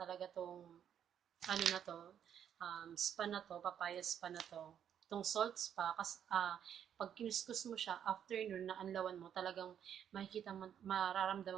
tong ano na to, spa na to, papaya spa na to, itong salt spa, kasi pag kiniskus mo siya, after nun, na anlawan mo, talagang makikita mo,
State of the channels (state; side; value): quieter; left; 9.1 dB